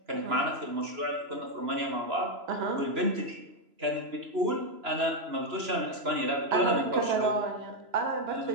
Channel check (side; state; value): left; late; 3.0 ms